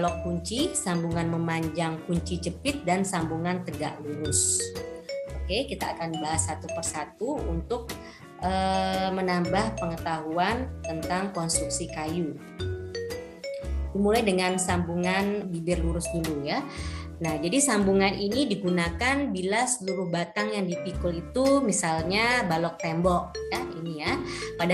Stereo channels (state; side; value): identical; both; correlation 1.00